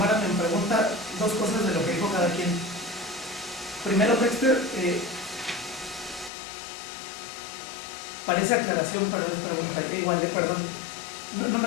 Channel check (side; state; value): right; drops out; at 6.3 s